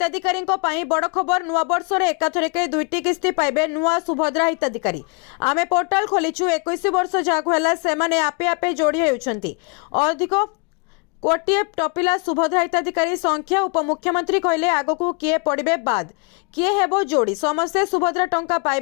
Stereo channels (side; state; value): right; quieter; 32.2 dB